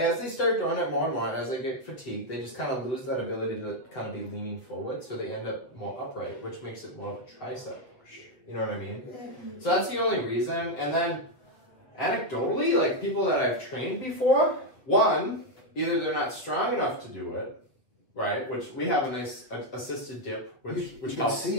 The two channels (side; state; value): right; late; 8.2 ms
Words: start doing it more and more, and as they get fatigued, they just kind of lose that ability to kind of be leaning forward. So they end up more upright, which makes it more of a tricep push. You know what I mean? So that's the only reason. And then anecdotally, like people that I've trained before, one, either they're not strong enough to do it, right? Which we have a nice assisted dip, which helps. See